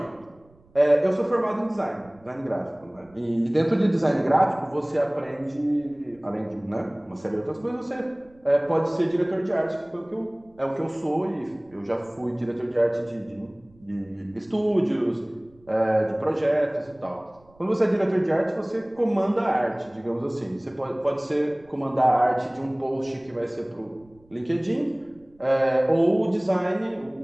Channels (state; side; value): noise; right; rumble, 30 dB below the sound